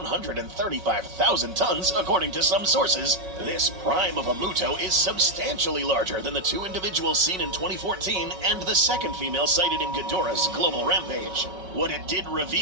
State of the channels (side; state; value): left; late; 5.3 ms